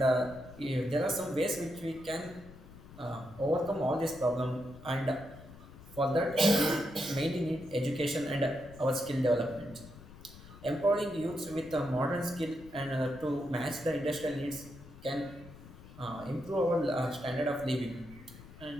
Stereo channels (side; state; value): left; noise; rumble, 18 dB below the sound